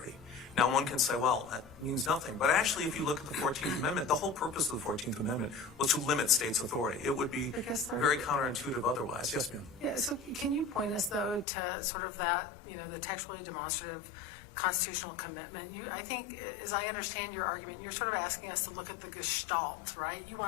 Now, one can say, well, that means nothing. But actually, if you look at the 14th Amendment, the whole purpose of the 14th Amendment was to limit states' authority. It would be very counterintuitive otherwise. Yes, ma'am. Yeah, so can you point us, though, to sort of that, the textually demonstrative constitutional commitment? I think, as I understand your argument, you're sort of asking us to look at the gestalt, right? You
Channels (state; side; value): drops out; right; at 11.5 s